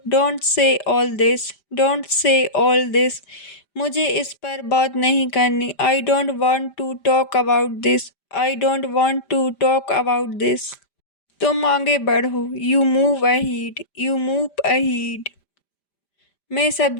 Don't say all this, don't say all this. मुझे इस पर बात नहीं करनी। I don't want to talk about this, I don't want to talk about this. तुम आगे बढ़ो। You move ahead, you move ahead. मैं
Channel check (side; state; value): right; late; 5.0 ms